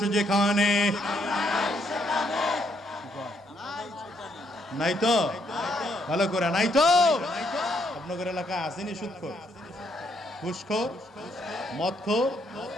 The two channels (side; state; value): both; normal; correlation 0.73